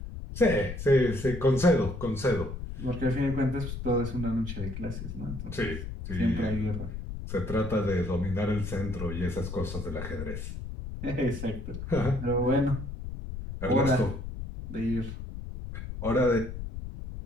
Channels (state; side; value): noise; left; rumble, 8 dB below the sound